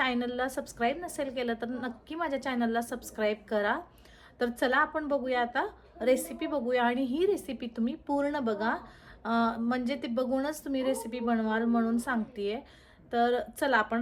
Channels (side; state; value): both; identical; correlation 1.00